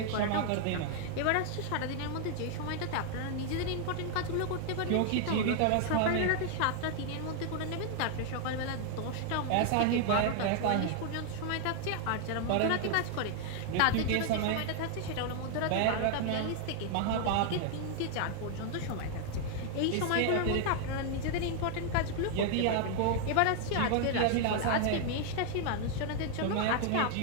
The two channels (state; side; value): different; both; correlation 0.00